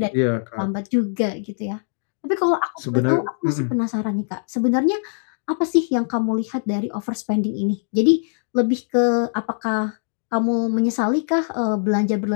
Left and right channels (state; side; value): silent; right; digital silence